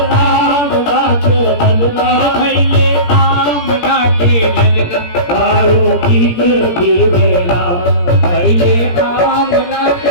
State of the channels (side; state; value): right; late; 17 ms